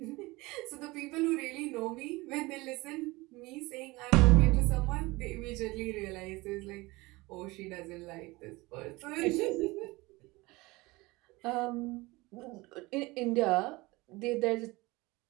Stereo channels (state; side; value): quieter; left; 22.2 dB